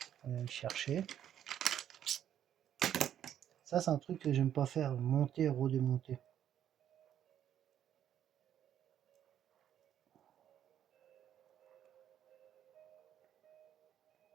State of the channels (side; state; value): left; quieter; 10.2 dB